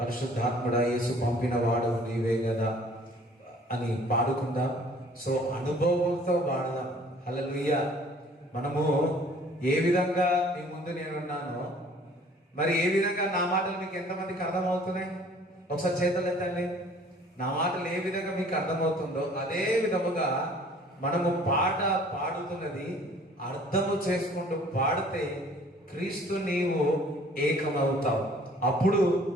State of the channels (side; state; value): both; normal; correlation 0.54